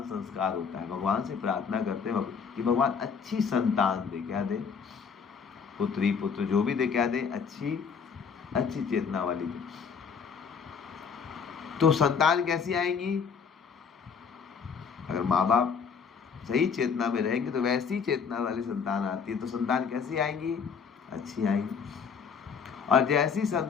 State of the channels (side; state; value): right; quieter; 6.2 dB